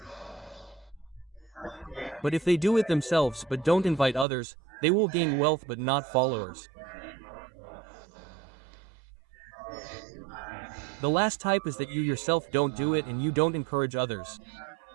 But if they do it themselves but don't invite others, they will gain wealth but not followers. The last type is that you yourself don't do it and you don't encourage others.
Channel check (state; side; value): drops out; left; at 4.2 s